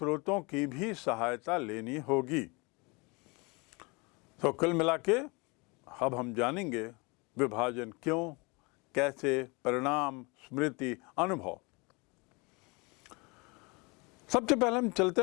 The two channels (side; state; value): right; quieter; 28.2 dB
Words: की भी सहायता लेनी होगी। तो कुल मिला के अब हम जानेंगे विभाजन क्यों, कैसे, परिणाम, स्मृति, अनुभव। सबसे पहले हम चलते